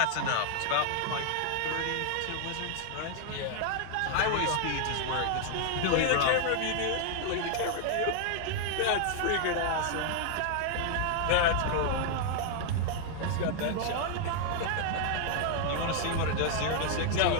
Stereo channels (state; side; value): different; both; correlation 0.00